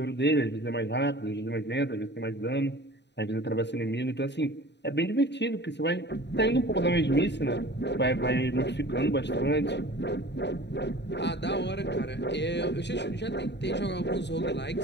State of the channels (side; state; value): right; late; 0.50 ms